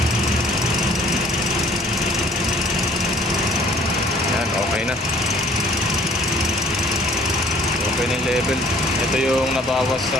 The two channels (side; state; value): both; normal; correlation 0.57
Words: Yan, okay na. Okay na yung level. Ito yung nabawas